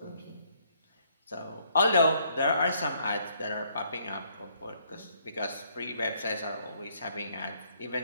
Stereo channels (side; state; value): both; inverted; correlation -0.68